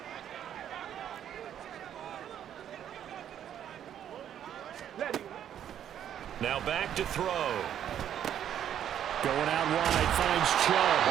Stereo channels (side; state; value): left; quieter; 10.0 dB